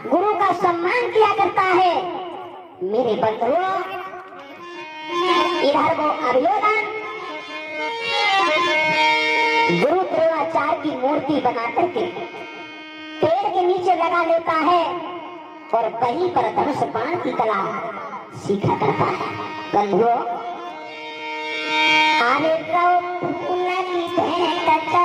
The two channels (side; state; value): both; identical; correlation 1.00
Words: गुरु का सम्मान किया करता है। मेरे बंधुओं, इधर वो अभियोजन गुरु द्रोणाचार्य की मूर्ति बना करके पेड़ के नीचे लगा लेता है और वहीं पर धनुष बाण की कला सीखा करता है। बंधुओं, आने फूल की भेंट